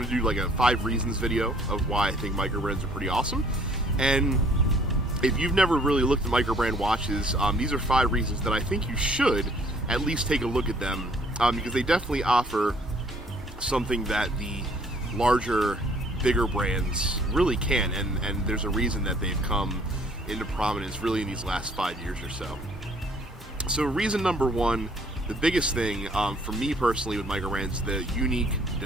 like a 5 reasons video of why I think microbrands are pretty awesome. And if you've never really looked at microbrand watches, these are 5 reasons that I think you should at least take a look at them, because they definitely offer something that the larger, bigger brands really can, and there's a reason that they've come into prominence really in these last 5 years or so. So reason number 1, the biggest thing for me personally with microbrands, the unique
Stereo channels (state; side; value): normal; both; correlation 0.60